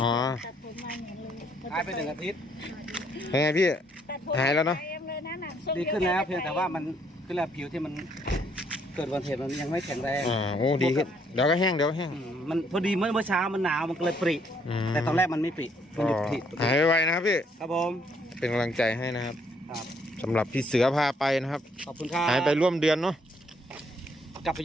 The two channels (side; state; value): both; normal; correlation 0.68